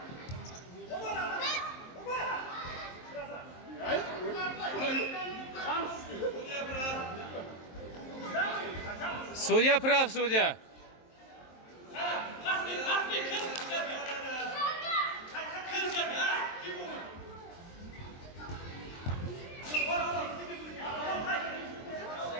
Судья прав, судья.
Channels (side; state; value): right; late; 23 ms